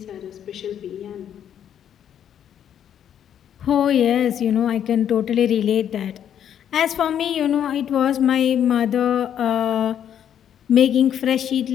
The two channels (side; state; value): right; quieter; 9.5 dB